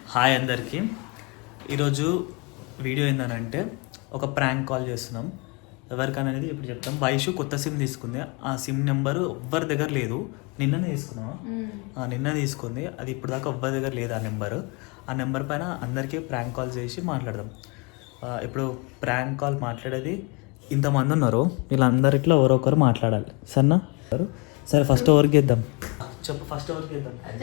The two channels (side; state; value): right; quieter; 30.0 dB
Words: అందరికీ. ఈరోజు video ఏంటంటే ఒక ప్రాంక్ కాల్ చేస్తున్నాం. ఎవరికనేది ఇప్పుడు చెప్తాం. వైషు కొత్త సిమ్ తీసుకుంది. ఆ సిమ్ నెంబరు ఎవ్వరి దగ్గర లేదు. నిన్ననే తీసుకున్నావా? నిన్న తీసుకుంది. అది ఇప్పుడు దాకా ఎవ్వరి దగ్గర లేదు ఆ నెంబరు. ఆ నెంబర్ పైన అందరికీ ప్రాంక్ కాల్ చేసి మాట్లాడదాం. ఇప్పుడు ప్రాంక్ కాల్ మాట్లాడేది ఇంతమంది ఉన్నారు. వీళ్ళందరిట్లో ఎవరొకరు మాట్లాడాలి. సరేనా? సరే, ఫస్ట్ ఎవరికి ఇద్దాం చెప్పు. ఫస్ట్ ఎవరికి ఇద్దాం?